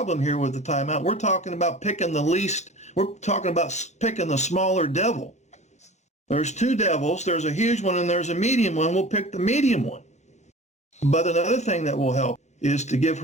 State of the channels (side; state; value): both; normal; correlation 0.39